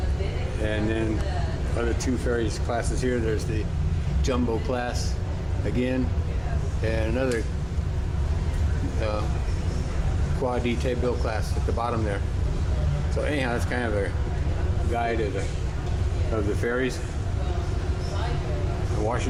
And then other 2 ferries classes here. There's the Jumbo class again, and another Quadi Tabil class at the bottom there. So anyhow, that's kind of a guide of the ferries.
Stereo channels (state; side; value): identical; both; correlation 1.00